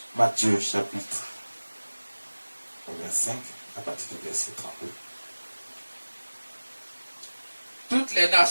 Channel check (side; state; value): both; inverted; correlation -1.00